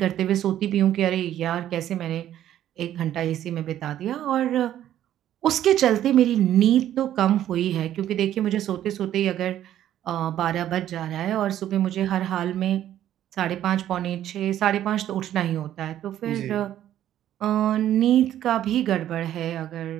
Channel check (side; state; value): left; quieter; 11.8 dB